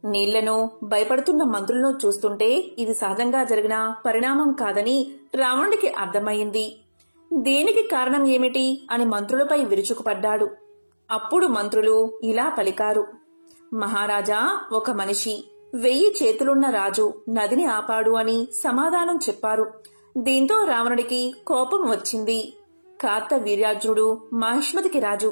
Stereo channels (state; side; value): inverted; both; correlation -1.00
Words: నీళ్లను భయపడుతున్న మంత్రులను చూస్తుంటే ఇది సహజంగా జరిగిన పరిణామం కాదని రావణుడికి అర్థమయ్యింది. దీనికి కారణం ఏమిటి అని మంత్రులపై విరుచుకుపడ్డాడు. అప్పుడు మంత్రులు ఇలా పలికారు, మహారాజా, ఒక మనిషి 1000 చేతులున్న రాజు నదిని ఆపాడు అని సమాధానం చెప్పారు. దీంతో రావణుడికి కోపం వచ్చింది. కార్తవీర్యార్జునుడు మాహిష్మతికి రాజు,